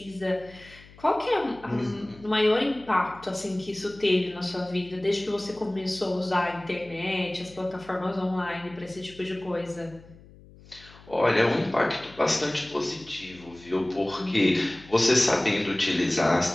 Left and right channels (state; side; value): noise; left; hum, 22 dB below the sound